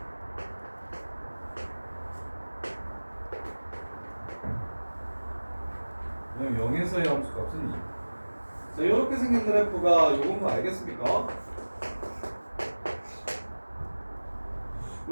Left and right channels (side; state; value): both; inverted; correlation -1.00